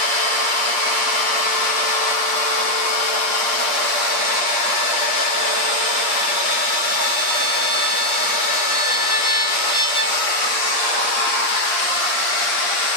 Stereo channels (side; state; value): right; late; 8.5 ms